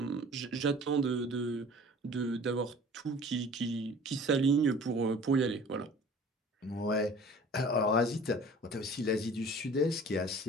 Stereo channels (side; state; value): both; normal; correlation 0.46